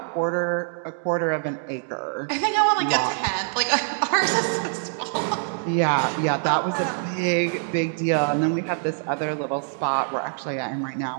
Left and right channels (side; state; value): left; silent; digital silence